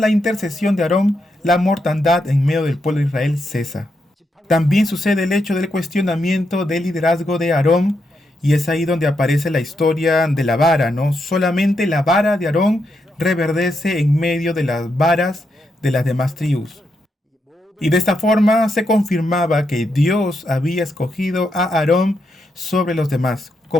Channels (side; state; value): both; normal; correlation 0.82